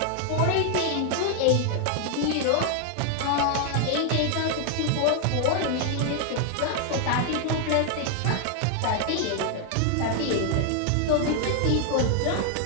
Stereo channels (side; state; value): both; different; correlation 0.00